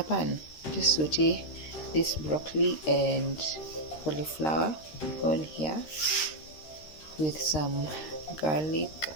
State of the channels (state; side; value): late; right; 13 ms